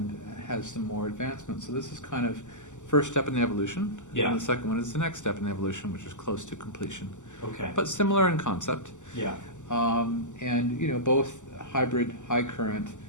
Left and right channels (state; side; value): late; right; 0.85 ms